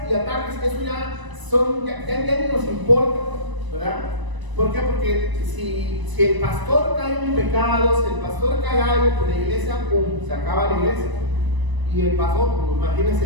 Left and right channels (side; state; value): left; late; 1.0 ms